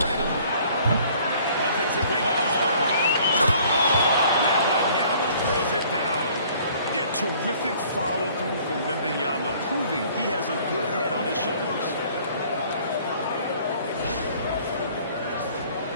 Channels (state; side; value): inverted; both; correlation -0.56